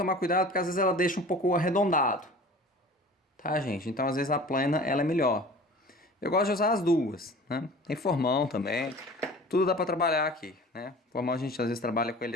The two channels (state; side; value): normal; both; correlation 0.42